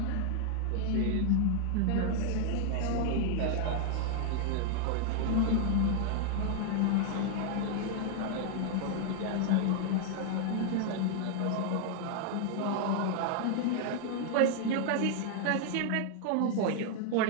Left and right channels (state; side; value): different; both; correlation 0.00